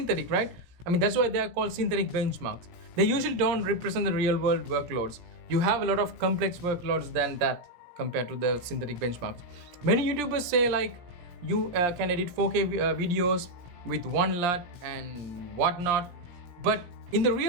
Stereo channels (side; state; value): left; late; 17 ms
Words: right? I mean, that's why they are called synthetic benchmarks. They usually don't represent the real world workloads. You have a lot of complex workloads than that compared to the synthetic benchmarks. Many YouTubers say like you can edit 4K videos with one LUT and whatnot, but in the